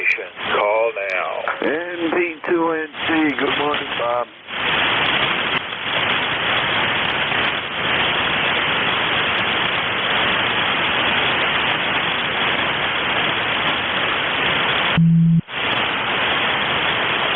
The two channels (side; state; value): both; identical; correlation 1.00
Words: call now. NJ2US, good morning, Bob.